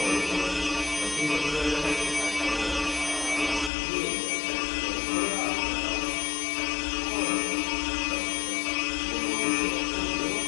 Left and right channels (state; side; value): drops out; right; at 3.7 s